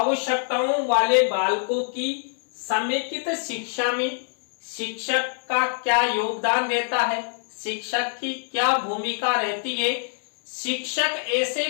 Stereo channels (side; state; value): right; silent; 62 dB below the other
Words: वाले बालकों की समेकित शिक्षा में शिक्षक का क्या योगदान रहता है, शिक्षक की क्या भूमिका रहती है, शिक्षक ऐसे